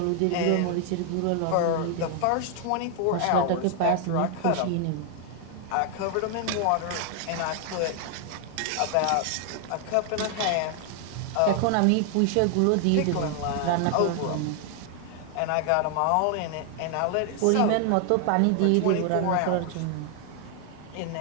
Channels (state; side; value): different; both; correlation 0.00